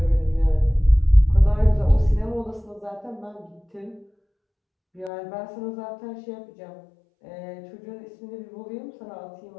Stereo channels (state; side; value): drops out; right; at 5.1 s